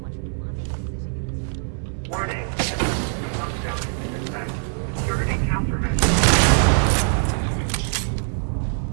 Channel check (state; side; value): silent; left; digital silence